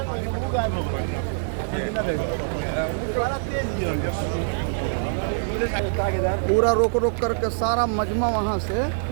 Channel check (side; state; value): left; silent; 62 dB below the other